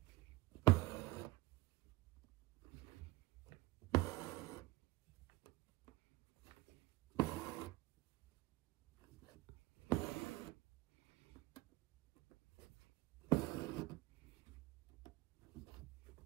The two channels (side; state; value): left; quieter; 19.8 dB